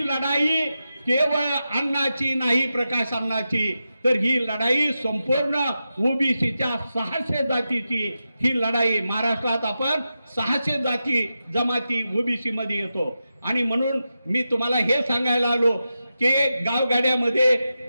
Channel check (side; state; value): both; inverted; correlation -0.91